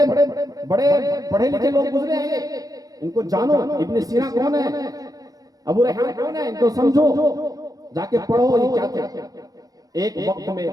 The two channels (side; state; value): left; late; 0.18 ms